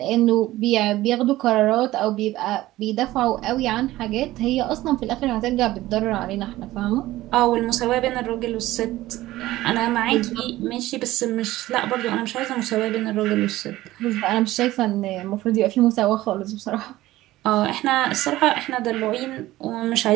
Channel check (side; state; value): left; quieter; 16.5 dB